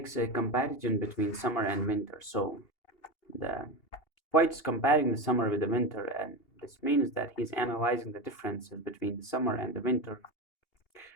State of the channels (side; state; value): right; late; 2.8 ms